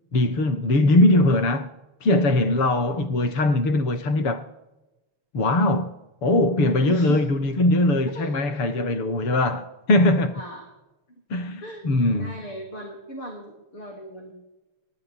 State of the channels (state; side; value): late; right; 6.8 ms